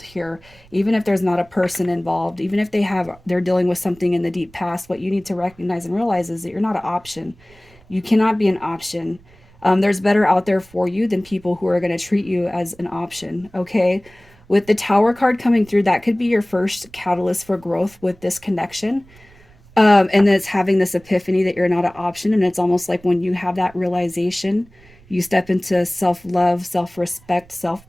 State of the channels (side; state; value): right; noise; rumble, 27 dB below the sound